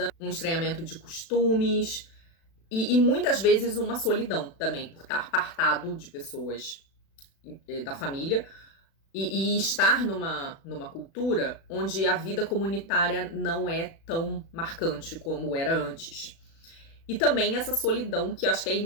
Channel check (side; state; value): right; late; 36 ms